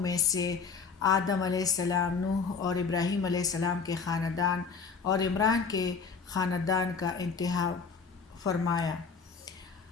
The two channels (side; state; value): right; quieter; 5.5 dB